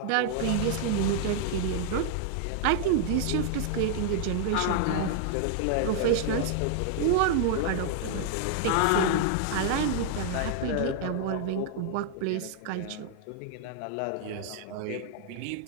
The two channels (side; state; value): both; different; correlation 0.00